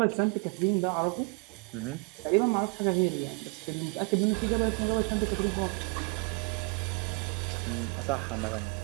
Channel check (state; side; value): quieter; left; 31.9 dB